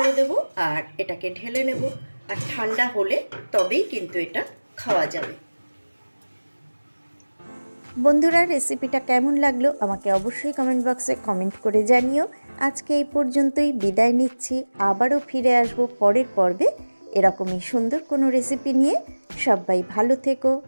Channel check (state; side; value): inverted; both; correlation -1.00